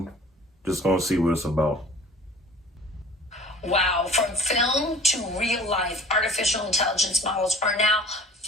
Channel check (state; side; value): normal; both; correlation 0.46